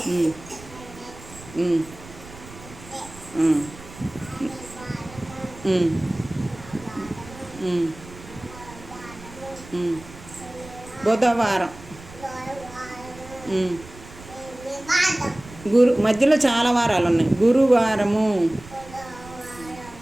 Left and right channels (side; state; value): right; noise; rumble, 18 dB below the sound